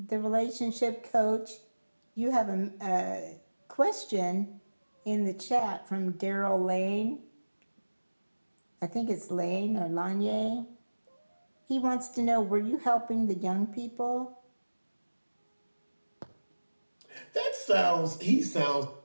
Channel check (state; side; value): inverted; both; correlation -1.00